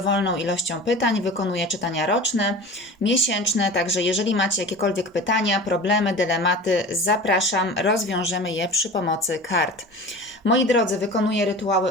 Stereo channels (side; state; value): both; normal; correlation 0.36